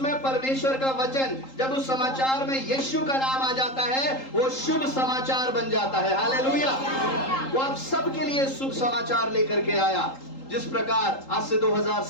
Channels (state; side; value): late; right; 3.8 ms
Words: परमेश्वर का वचन, जब उस समाचार में यीशु का नाम आ जाता है, वो शुभ समाचार बन जाता है। हालेलुया। वो आप सबके लिए शुभ समाचार लेकर के आया। जिस प्रकार आज से 2000